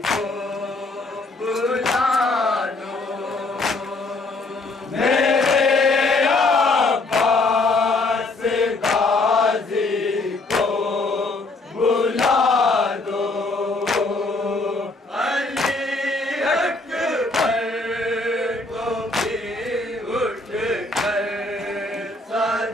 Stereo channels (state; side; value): quieter; right; 3.2 dB